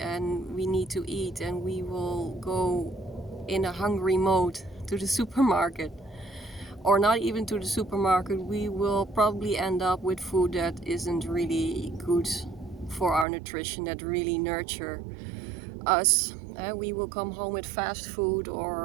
we need to eat, and we will go in a hungry mode to the supermarket, or not even to the supermarket. We will probably end up with food that isn't really good for our nutrition, that really nurture us. We will come home with fast food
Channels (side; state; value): left; drops out; at 13.2 s